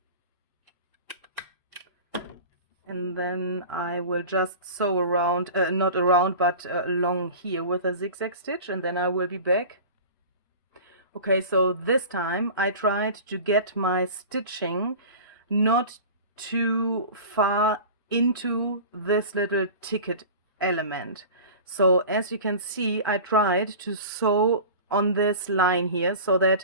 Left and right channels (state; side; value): inverted; both; correlation -0.36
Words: And then I will just sew around, not around, but along here with a zigzag stitch, and then I will be back. Okay, so this time I tried to get my stitching not too far into this little ticket element. So as you can see, I tried to sew on this line here so that